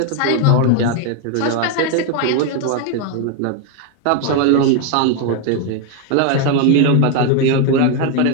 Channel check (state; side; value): different; both; correlation 0.01